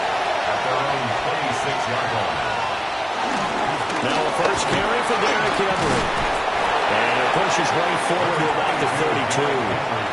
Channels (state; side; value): identical; both; correlation 1.00